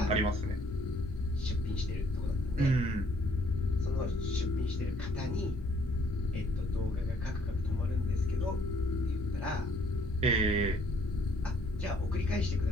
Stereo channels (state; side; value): normal; both; correlation 0.64